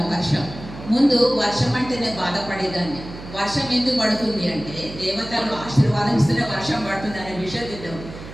వర్షం. ముందు వర్షం అంటేనే బాధపడేదాన్ని. వర్షం ఎందుకు పడుతుంది అంటే దేవతలు ఆశీర్వాదం ఇస్తేనే వర్షం పడుతుంది అనే విషయం తెలియదు.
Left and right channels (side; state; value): right; noise; hum, 13 dB below the sound